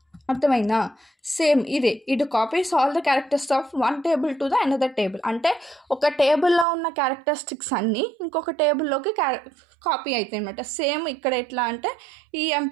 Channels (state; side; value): drops out; left; at 6.7 s